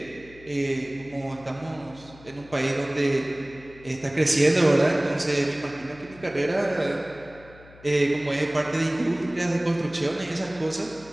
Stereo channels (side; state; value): left; noise; hum, 22 dB below the sound